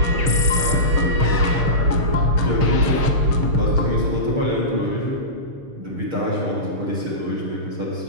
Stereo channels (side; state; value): left; late; 6.4 ms